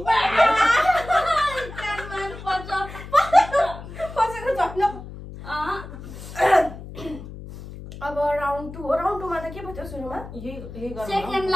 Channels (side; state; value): left; noise; hum, 13 dB below the sound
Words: अब राउन्ड 2 हो राउन्ड 2 मा त के भयो सुरुमा